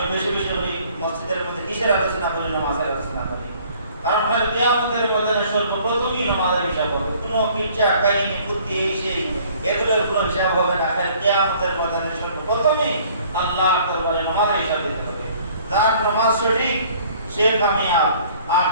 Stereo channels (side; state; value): both; inverted; correlation -0.56